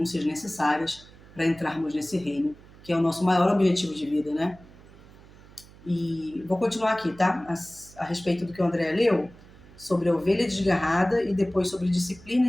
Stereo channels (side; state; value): right; noise; hum, 22 dB below the sound